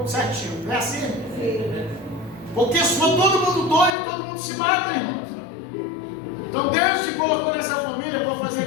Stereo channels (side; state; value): right; drops out; at 3.9 s